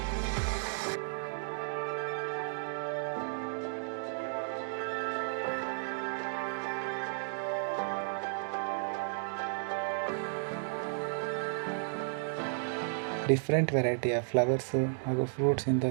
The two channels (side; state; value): left; silent; digital silence